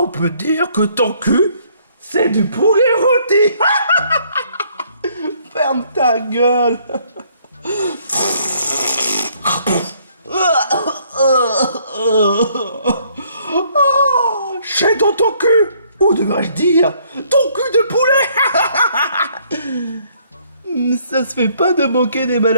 peut dire que ton cul, c'est du poulet rôti. Ferme ta gueule. J'ai dans ton cul. Ou devrais-je dire, ton cul de poulet. Ça se fait pas de moquer des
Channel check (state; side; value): inverted; both; correlation -0.65